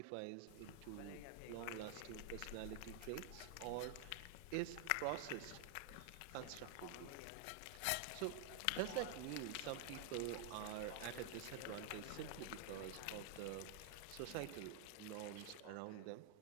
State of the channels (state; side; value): different; both; correlation 0.00